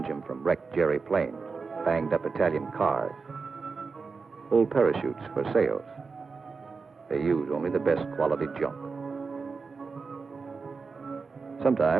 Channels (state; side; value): quieter; left; 4.7 dB